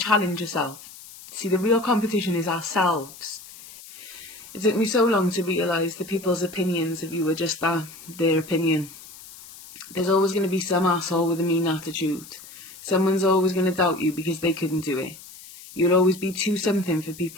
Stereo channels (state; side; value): noise; left; hiss, 18 dB below the sound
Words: yourself. See, the real competition is ourselves. It took me so long to realise that people's opinions of you are just that, their opinion. There's always going to be some asshole with a mean attitude. Someone's always going to doubt you because they couldn't do it. You'll always be too something for